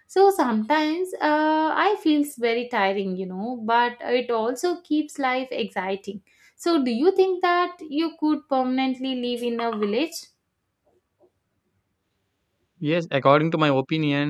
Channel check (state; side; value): identical; both; correlation 1.00